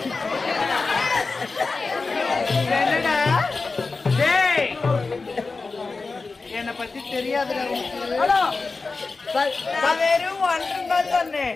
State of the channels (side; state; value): right; quieter; 4.0 dB